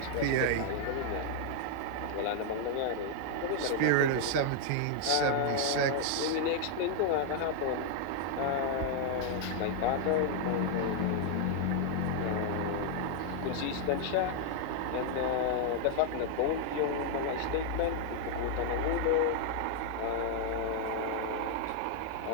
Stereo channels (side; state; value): both; different; correlation 0.00